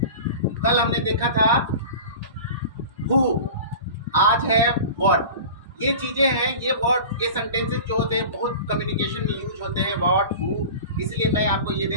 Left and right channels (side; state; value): both; inverted; correlation -0.36